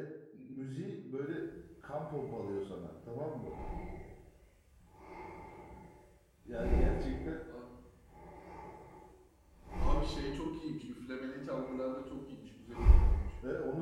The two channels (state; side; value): identical; both; correlation 1.00